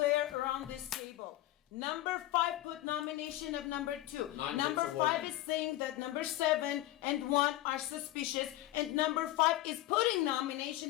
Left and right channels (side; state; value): right; quieter; 15.7 dB